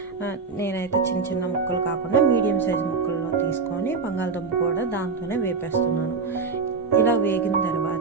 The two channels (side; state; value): left; quieter; 4.7 dB